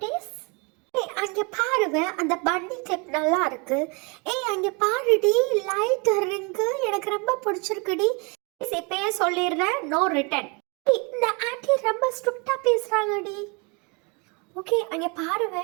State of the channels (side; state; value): left; quieter; 31.3 dB